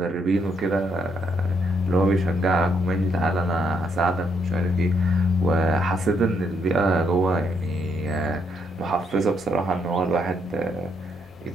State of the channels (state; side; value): normal; both; correlation 0.74